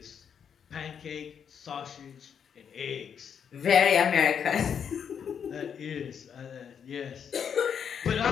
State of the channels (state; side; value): quieter; right; 7.6 dB